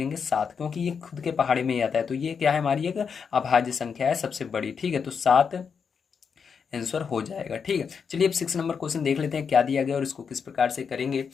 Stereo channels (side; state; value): right; quieter; 6.3 dB